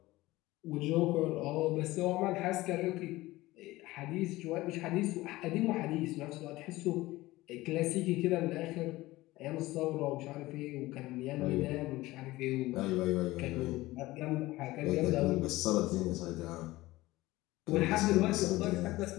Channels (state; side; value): quieter; right; 18.6 dB